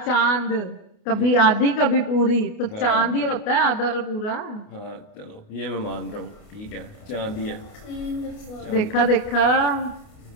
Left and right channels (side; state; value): right; late; 29 ms